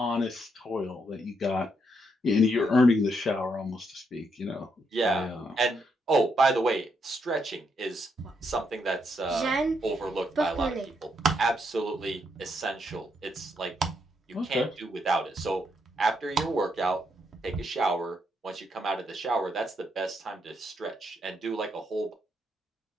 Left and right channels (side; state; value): both; normal; correlation 0.77